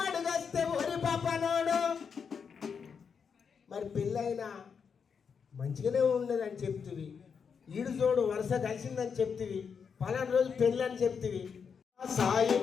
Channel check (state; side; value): quieter; right; 6.4 dB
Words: అడుగస్తే ఒరి పాపనోడు. మరి పెళ్ళైనా మంచిగానే ఉండదని చెప్తివి, ఈడు జోడు వరుస కలిసిందని చెప్తివి, పలానా రోజు పెళ్ళి అని చెప్తివి.